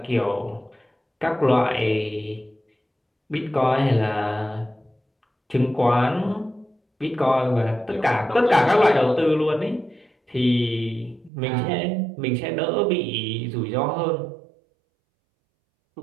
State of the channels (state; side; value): drops out; left; at 11.3 s